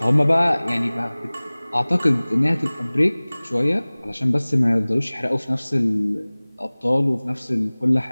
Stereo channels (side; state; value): both; inverted; correlation -1.00